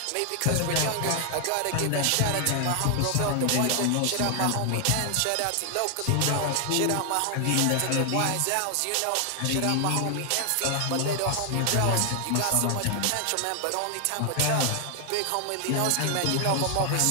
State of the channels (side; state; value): both; different; correlation 0.00